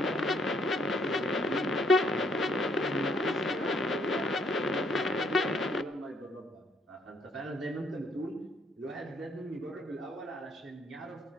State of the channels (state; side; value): normal; both; correlation 0.68